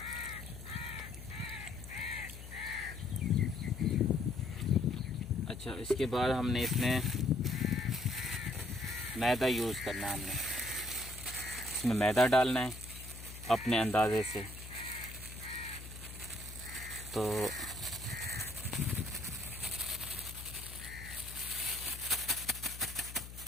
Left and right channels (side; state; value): left; noise; hum, 12 dB below the sound